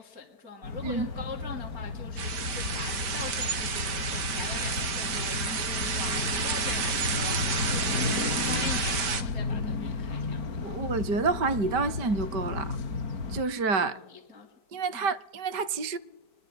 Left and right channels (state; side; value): late; left; 5.0 ms